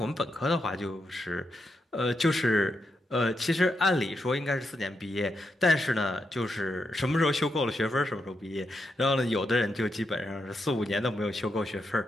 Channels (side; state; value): both; normal; correlation 0.83